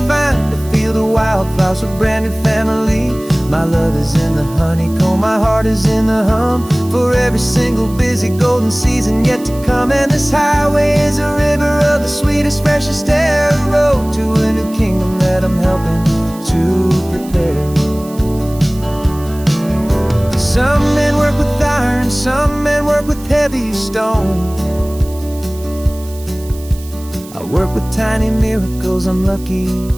find a field of wildflowers with brand new family. My love is in the honeycomb, my heart is in the hum, for every single busy golden season yet to come. And this highway is a river of the sweetest, freshest air, a road to a new kingdom that I'm helping to prepare. Some men work with iron, some men work with heavy stone. I work with tiny miracles I'm lucky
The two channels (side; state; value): right; noise; hiss, 20 dB below the sound